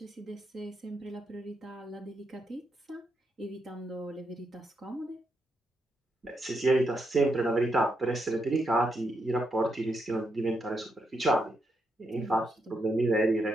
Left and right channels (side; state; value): both; normal; correlation 0.81